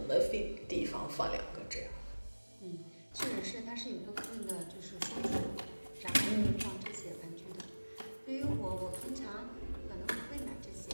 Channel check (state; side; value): inverted; both; correlation -1.00